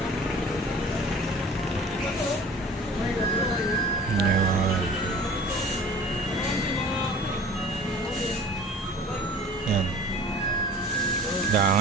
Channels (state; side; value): normal; both; correlation 0.44